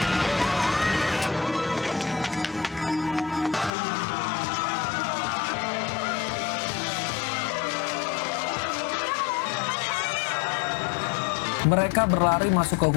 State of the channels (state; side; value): drops out; right; at 3.7 s